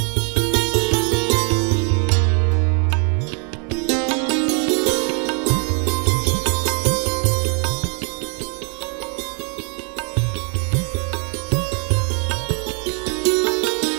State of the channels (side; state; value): left; quieter; 38.3 dB